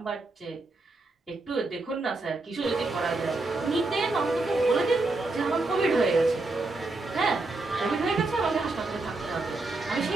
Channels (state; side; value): quieter; left; 3.2 dB